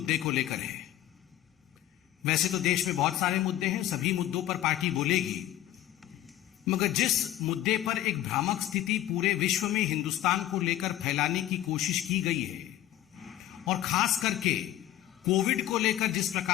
को लेकर है। वैसे तो देश में बहुत सारे मुद्दे हैं, सभी मुद्दों पर पार्टी बोलेगी, मगर जिस मुद्दे पर एक भ्रामक स्थिति पूरे विश्व में हिंदुस्तान को लेकर फैलाने की कोशिश की गई है और खास करके कोविड को लेकर जिस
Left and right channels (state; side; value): quieter; right; 13.4 dB